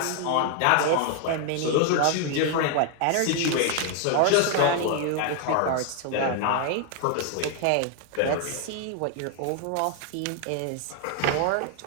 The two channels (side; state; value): both; different; correlation 0.00